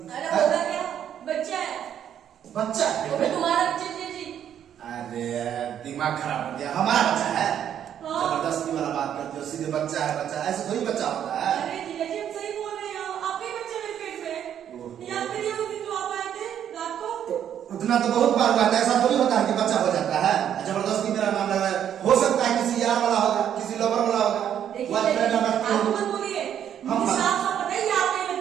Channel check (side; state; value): left; quieter; 9.6 dB